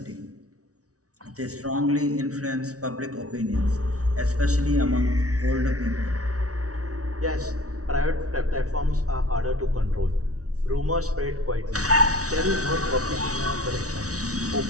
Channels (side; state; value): left; late; 0.67 ms